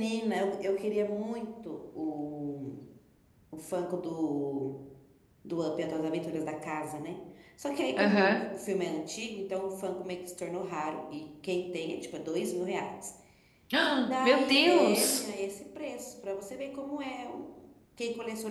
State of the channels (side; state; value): both; identical; correlation 1.00